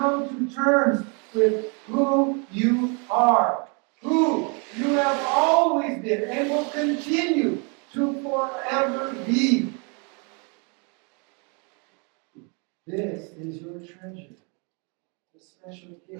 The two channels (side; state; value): left; quieter; 34.7 dB